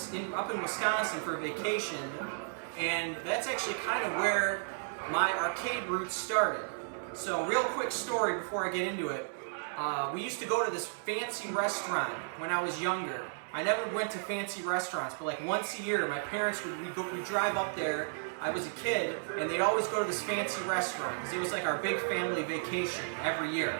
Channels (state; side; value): silent; left; 55 dB below the other